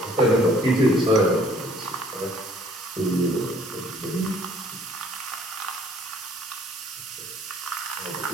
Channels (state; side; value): normal; both; correlation 0.58